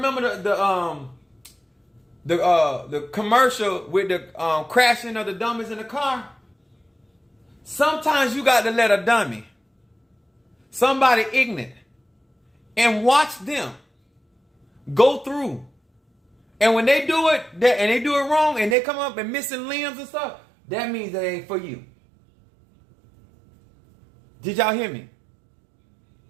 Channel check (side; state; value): left; drops out; at 18.8 s